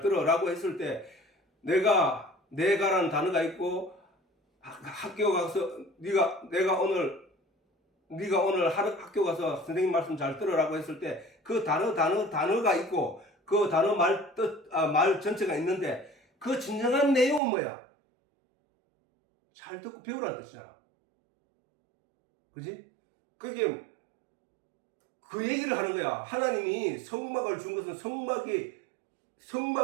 들어 라고 했을 때 내가라는 단어가 있고, 학교 가서 네가 오늘 학교 가서 선생님 말씀 잘 들으라고 했을 때 그 단어가 있고 그 단어 말 전체가 있는데 그 진정한 내용은 뭐야? 잘 듣고 배우라는 뜻이잖아. 그지? 그게 그 얘기를 하는 거야. 하나님이 성막을 준 것은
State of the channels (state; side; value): drops out; left; at 17.4 s